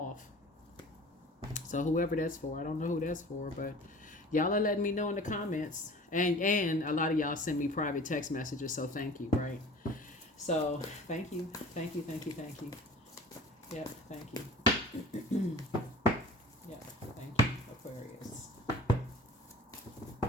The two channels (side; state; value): both; normal; correlation 0.42